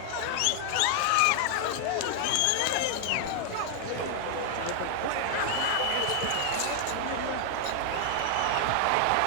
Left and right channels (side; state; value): both; different; correlation 0.00